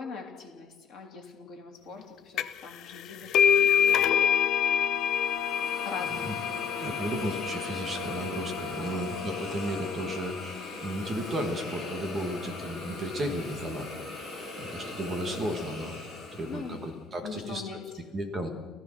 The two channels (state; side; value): quieter; right; 5.2 dB